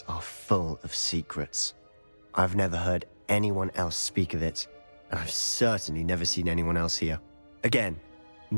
are full of secrets. I've never heard anyone else speak of it, and I've certainly never seen anyone else here. Again,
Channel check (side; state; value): both; inverted; correlation -1.00